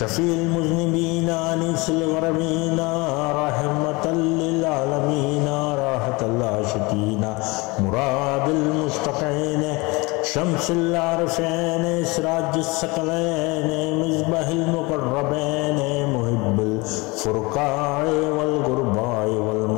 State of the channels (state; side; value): quieter; right; 25.5 dB